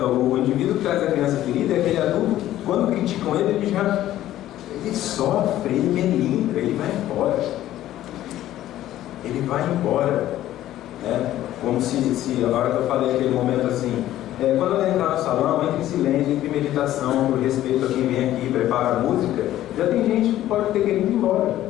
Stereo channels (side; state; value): right; quieter; 13.5 dB